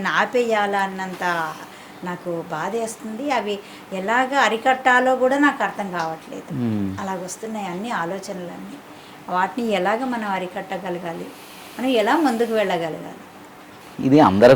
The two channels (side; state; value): both; identical; correlation 1.00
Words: ఆపేయాలా అన్నంత నాకు బాధేస్తుంది. అవి ఎలాగ అరికట్టాలో కూడా నాకు అర్థం కావట్లేదు. అలాగొస్తున్నాయి అన్ని ఆలోచనలన్నీ. వాటిని ఎలాగ మనం అరికట్టగలగాలి, మనం ఎలా ముందుకు వెళ్ళగలగాలి? ఇది